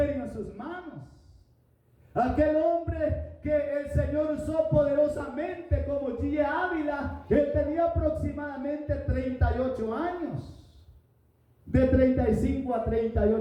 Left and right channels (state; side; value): identical; both; correlation 1.00